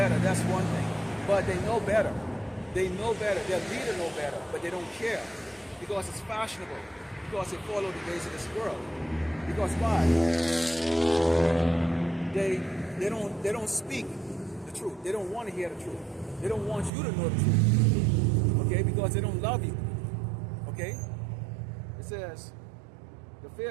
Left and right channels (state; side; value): drops out; left; at 16.9 s